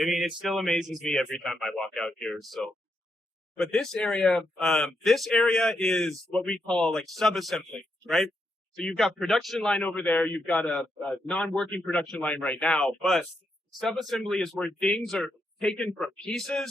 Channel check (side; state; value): both; normal; correlation 0.81